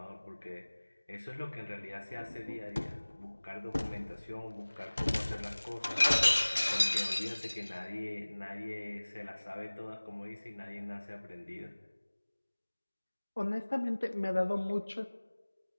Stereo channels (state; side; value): inverted; both; correlation -1.00